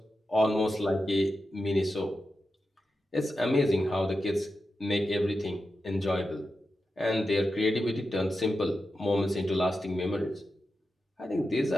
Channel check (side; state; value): both; normal; correlation 0.90